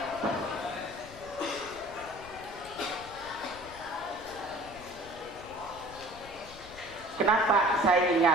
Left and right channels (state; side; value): noise; left; rumble, 18 dB below the sound